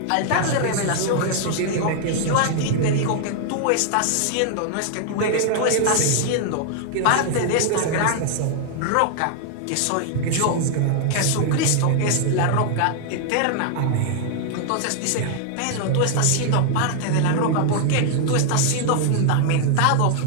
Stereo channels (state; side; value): different; both; correlation 0.00